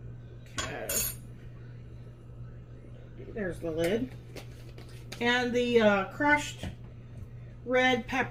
Okay. There's the lid. And the crushed red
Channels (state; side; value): identical; both; correlation 1.00